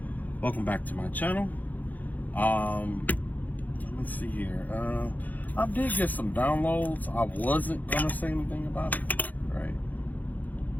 welcome back to my channel. Let me see here. I did get some downloads. I wasn't gonna say anything about it, right?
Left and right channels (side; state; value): right; late; 0.082 ms